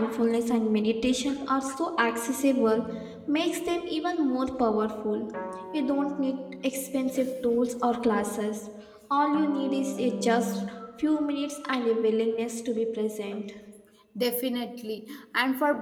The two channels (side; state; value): both; identical; correlation 1.00